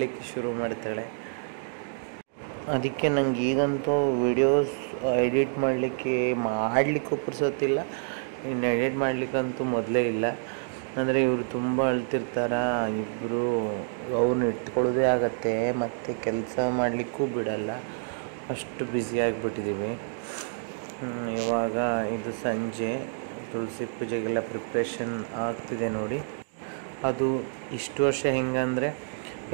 ಶುರು ಮಾಡ್ತಾಳೆ. ಅದಕ್ಕೆ ನಂಗೆ ಈಗಂತೂ ವಿಡಿಯೋಸ್ ಎಡಿಟ್ ಮಾಡಲಿಕ್ಕೂ ಪುರ್ಸೊತ್ತಿಲ್ಲ. ಇನ್ನು ಎಡಿಟ್ ಮಾಡಲಿಕ್ಕಂತೂ ಮೊದಲೇ ಇಲ್ಲ. ಅಂದರೆ ಇವರು ತುಂಬ ಅಳ್ತಿರ್ತಾರ ಇಬ್ಬರು. ಅವ್ರನ್ನ ಇಟ್ಕೊಳ್ಳೋದೇ ಆಗತ್ತೆ, ಮತ್ತು ಕೆಲಸ ಮಾಡಲಿಕ್ಕೂ ಬಿಡಲ್ಲ, ಅಷ್ಟು ಬ್ಯುಸಿಯಾಗಿಬಿಟ್ಟಿದ್ದೀವಿ. ಇವಾಗ ಇದು ಸಂಜೆ ತುಳಸಿ ಪೂಜೆಗೆಲ್ಲ ಪ್ರಿಪ್ರೇಷನ್ ಆಗ್ತಿದೆ ನೋಡಿ. ಅದು ಇಷ್ಟು ವರ್ಷ ಹೆಂಗಂದರೆ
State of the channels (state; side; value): silent; left; digital silence